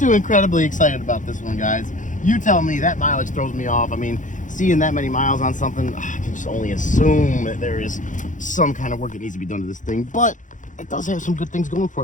incredibly excited about this one, guys. You tell me. That mileage throws me off. I mean, seeing that many miles on something, I can just only assume that there is some kind of work that needs to be done to this thing. But it does have some good things going for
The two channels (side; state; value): right; late; 0.37 ms